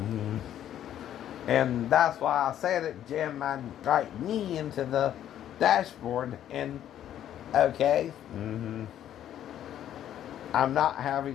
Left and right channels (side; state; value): right; quieter; 11.0 dB